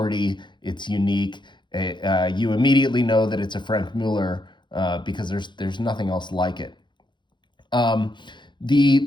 It's unique. You immediately know that it's a Franck Muller because there's nothing else like it.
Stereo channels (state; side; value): late; right; 0.23 ms